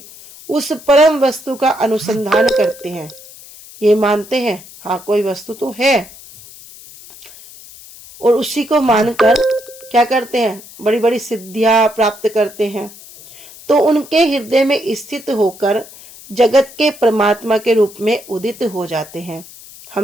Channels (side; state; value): left; noise; hiss, 19 dB below the sound